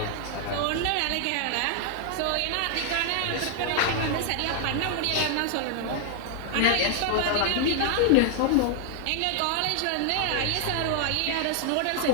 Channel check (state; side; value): different; both; correlation 0.00